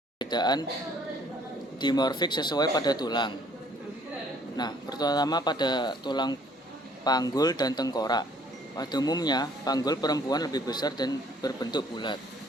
Perbedaan dimorfik sesuai pada tulang. Nah, pertama pada tulang panggul dan tengkorak. Pada umumnya, panggul perempuan lebih besar dan berbentuk bulat.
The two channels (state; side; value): normal; both; correlation 0.60